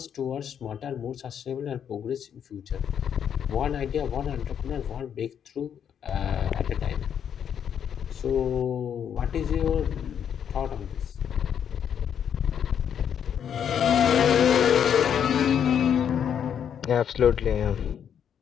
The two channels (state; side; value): quieter; right; 8.5 dB